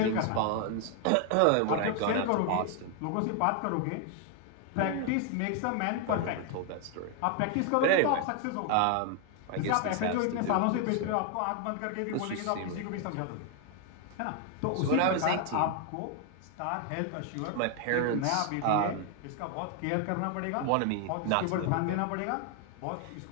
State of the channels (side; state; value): both; different; correlation 0.00